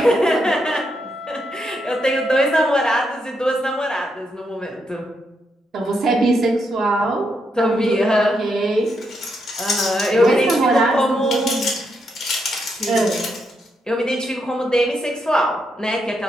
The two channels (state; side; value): normal; both; correlation 0.80